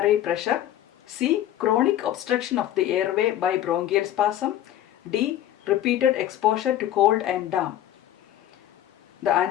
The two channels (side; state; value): right; quieter; 12.3 dB